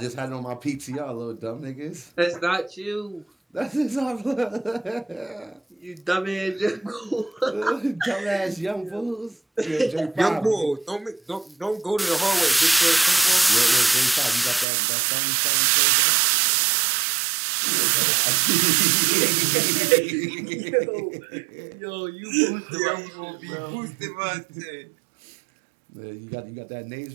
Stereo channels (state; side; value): drops out; left; at 14.7 s